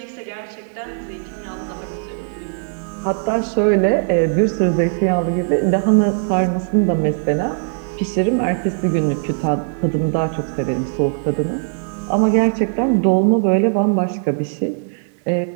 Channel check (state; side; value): silent; left; 66 dB below the other